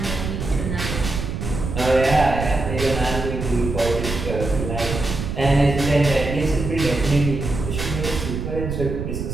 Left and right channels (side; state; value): right; noise; rumble, 5 dB below the sound